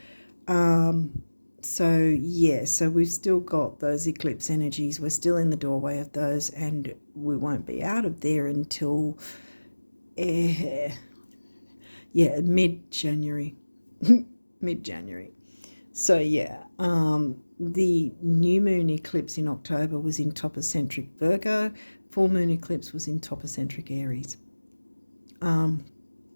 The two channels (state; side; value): inverted; both; correlation -1.00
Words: So we've still got those eclipse energies. We're still in the doorway of those, and we won't be out of there until mid-January. Mid-January. So the new moon eclipse in October was in topocentric Virgo. Full moon eclipse was in topocentric Aries.